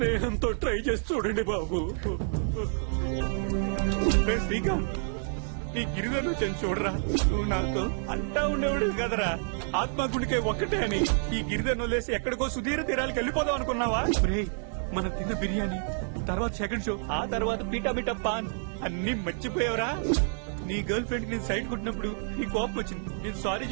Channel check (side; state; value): left; silent; 58 dB below the other